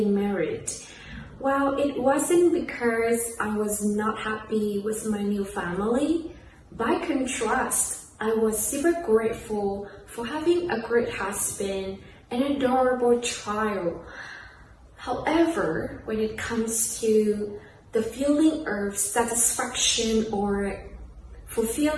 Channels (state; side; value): identical; both; correlation 1.00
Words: married. Well, it wasn't because I was not happy with my new family. By contrast, I was super grateful for having a great husband and an adorable child. However, when it comes to the feeling of satisfaction or